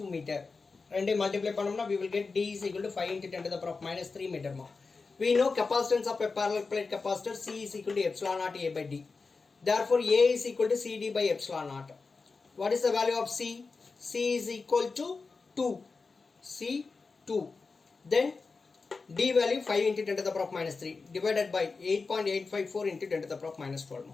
2 meter ரெண்டே multiply பண்ணோம்னா we will get D is equal to 5 into 10 to the power of minus 3 meter we know capacitance of a parallel plate capacitor C is equal to epsilon naught A by D therefore A is equal to CD by epsilon naught What is the value of C? C is equal to 2. C 2. Then D value 5 into 10 to the power of minus 3 divided by 8.854 into 10 to the power of minus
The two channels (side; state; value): right; quieter; 4.3 dB